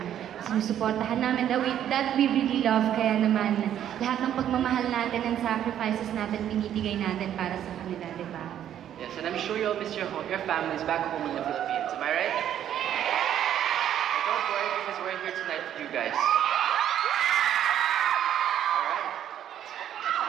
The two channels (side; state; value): left; quieter; 10.5 dB